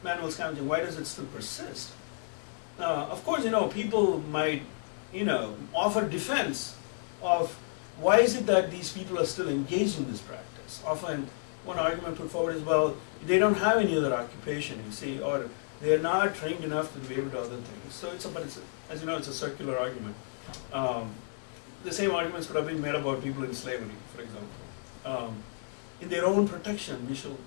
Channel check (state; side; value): silent; right; digital silence